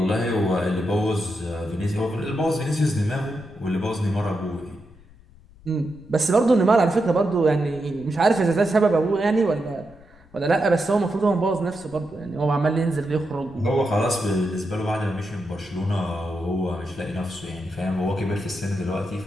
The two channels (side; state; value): left; noise; rumble, 25 dB below the sound